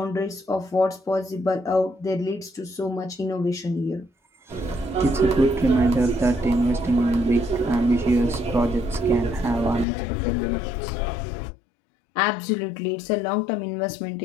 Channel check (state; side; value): drops out; right; at 9.9 s